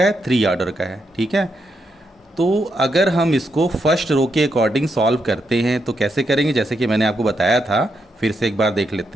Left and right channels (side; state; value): both; normal; correlation 0.81